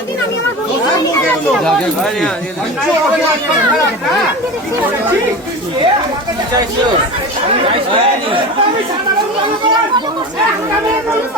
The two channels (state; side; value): normal; both; correlation 0.29